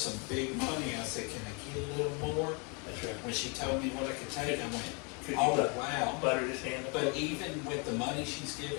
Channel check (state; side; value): quieter; right; 33.8 dB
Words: big money, I said, can I get a little more? That's right. When she told me what I could take, I went, Could you oh, wow. butter this hand up? But even with the money she's